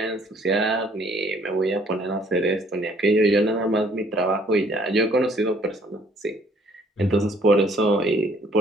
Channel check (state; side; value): normal; both; correlation 0.61